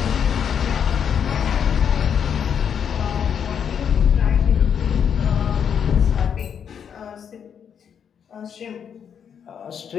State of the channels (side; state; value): right; quieter; 7.8 dB